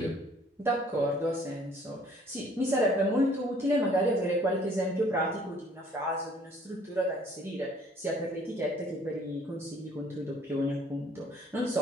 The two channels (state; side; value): normal; both; correlation 0.58